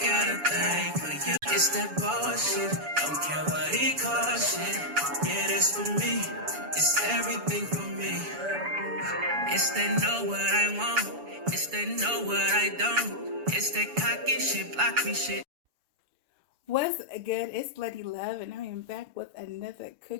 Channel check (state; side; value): late; left; 7.0 ms